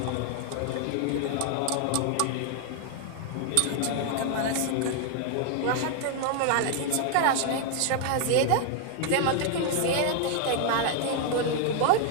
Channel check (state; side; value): different; both; correlation 0.00